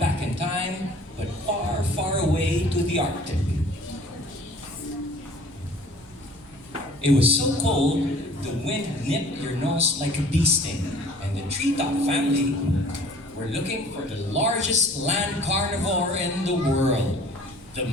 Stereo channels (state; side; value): noise; right; hum, 25 dB below the sound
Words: in time, but far, far away to the Arctic. It was so cold, the wind nipped your nose like a bee sting, and the treetop family were looking for the largest land carnivore in the world, the